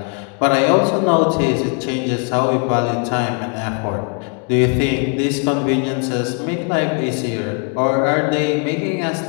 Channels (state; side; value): quieter; right; 38.3 dB